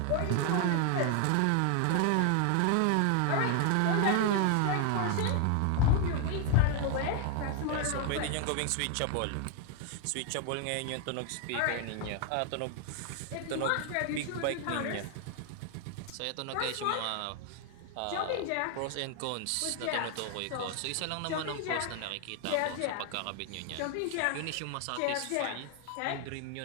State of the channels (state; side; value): different; both; correlation 0.00